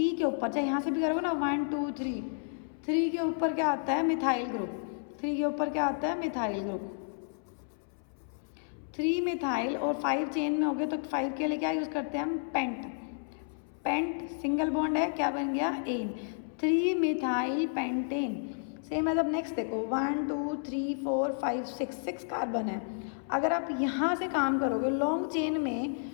के ऊपर चाहे यहाँ से भी करोगे ना, 1 2 3, 3 के ऊपर क्या आता है, मिथाइल ग्रुप। 3 के ऊपर क्या आता है, मिथाइल ग्रुप। 3 मिथाइल और 5 चेन में हो गए, तो 5 के लिए क्या यूज़ करते हैं हम, पेंट। पेंट सिंगल बॉन्ड है, क्या बन गया, एन। 3 methyl pentane. सेम है। अब नेक्स्ट देखो, 1 2 3 4 5 6 कार्बन है। अगर आप यहाँ से काम करोगे लॉन्ग चेन में,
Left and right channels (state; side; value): silent; right; 57 dB below the other